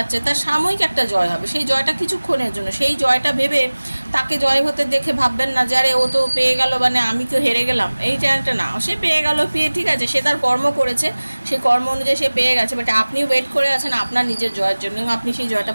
তার সাময়িক একটা জয় হবে। সেই জয়টা কিছুক্ষণের জন্য, সেই জয়টা ভেবে তাকে জয় হতে দেখে ভাববেন না যে আরে ও তো পেয়ে গেল, মানে আমি তো হেরে গেলাম, এই চ্যানেলটা না। সে পেয়ে গেল, ঠিক আছে, সে তার কর্ম করেছে, সেই কর্ম অনুযায়ী সে পেয়ে গেছে, বাট আপনি ওয়েট করে আছেন আপনার নিজের জয়ের জন্য, আপনি সেই জয়টা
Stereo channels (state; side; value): inverted; both; correlation -1.00